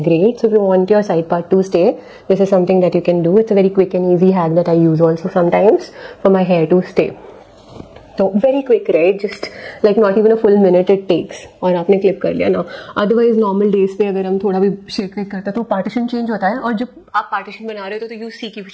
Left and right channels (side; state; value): both; identical; correlation 1.00